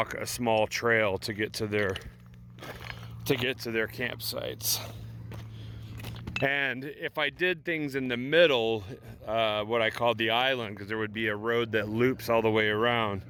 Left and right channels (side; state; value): both; identical; correlation 1.00